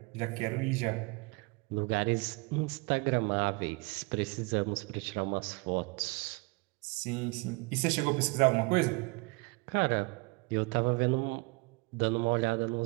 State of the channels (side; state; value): left; quieter; 28.3 dB